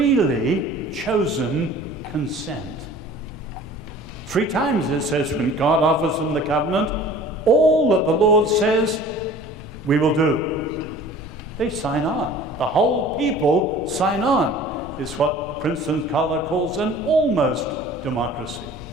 chosen consent. 3 times it says when God offers them the covenant, all that the Lord says, we will do. They sign on. The whole people sign on. It's what Princeton Scholar calls an almost democracy.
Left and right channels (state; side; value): noise; left; rumble, 15 dB below the sound